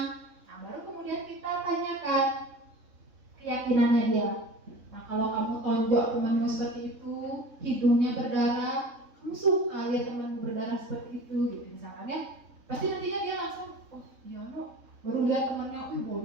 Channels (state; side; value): late; left; 3.6 ms